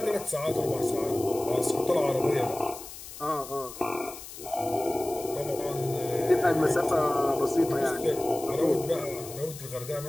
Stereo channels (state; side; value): noise; left; hiss, 13 dB below the sound